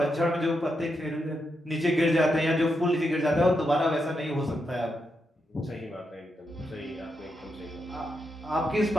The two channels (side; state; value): both; normal; correlation 0.84